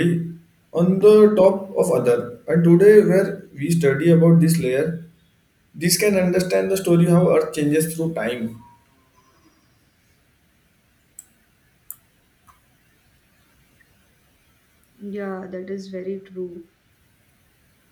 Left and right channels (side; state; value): both; identical; correlation 1.00